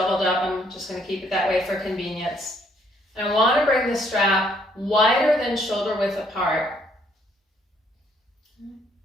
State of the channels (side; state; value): both; normal; correlation 0.67